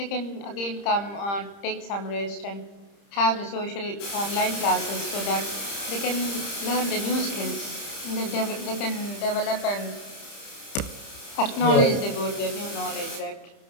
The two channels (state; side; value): late; right; 30 ms